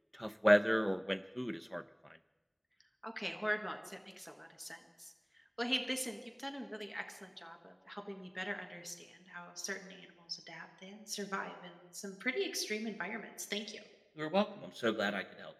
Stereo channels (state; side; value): identical; both; correlation 1.00